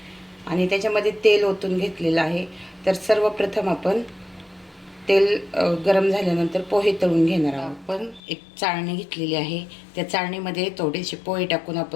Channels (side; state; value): right; drops out; at 8.2 s